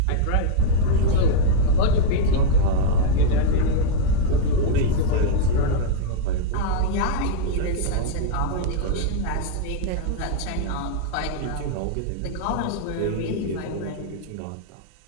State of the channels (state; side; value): different; both; correlation -0.01